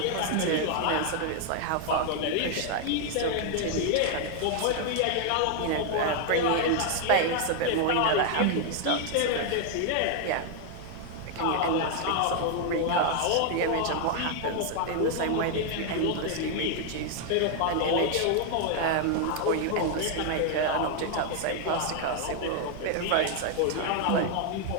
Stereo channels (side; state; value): both; different; correlation 0.00